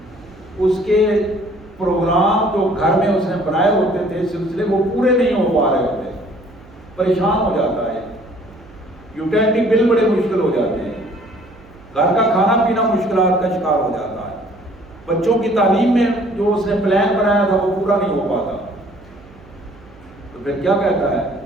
اس کے پروگرام جو گھر میں اس نے بنائے ہوتے تھے سلسلے وہ پورے نہیں ہو پا رہے ہوتے, پریشان ہو جاتا ہے, یوٹیلیٹی بل بڑے مشکل ہو جاتے ہیں, گھر کا کھانا پینا مشکلات کا شکار ہو جاتا ہے, بچوں کی تعلیم میں جو اس نے پلان بنایا تھا وہ پورا نہیں ہو پاتا, تو پھر کیا کہتا ہے؟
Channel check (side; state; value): right; noise; hum, 23 dB below the sound